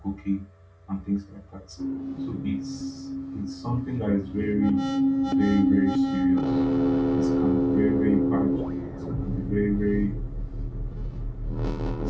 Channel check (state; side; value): identical; both; correlation 1.00